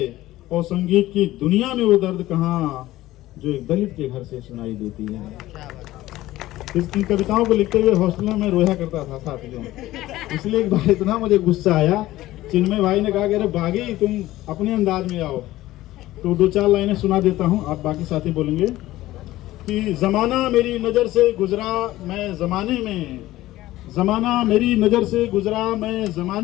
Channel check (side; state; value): right; quieter; 16.2 dB